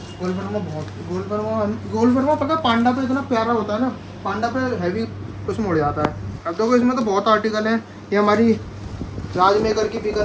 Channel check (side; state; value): both; identical; correlation 1.00